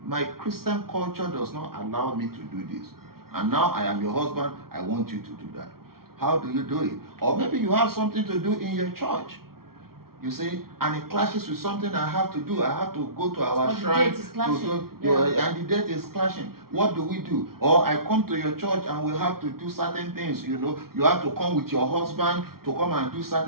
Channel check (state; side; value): late; left; 0.94 ms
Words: my Christian culture does not allow me to do this, and now I am your husband, I want you to do that. How do you do it? Or maybe you have something to do in your church, you see, and it clashes with something I have to do. I have to go to our shrine to do, and the date is clashing. What do we do? Or I come to your church and we have to do certain things. You know, you have to come with your husband to come and do